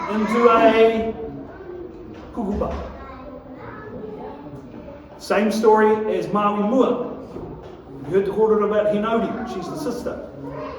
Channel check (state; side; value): identical; both; correlation 1.00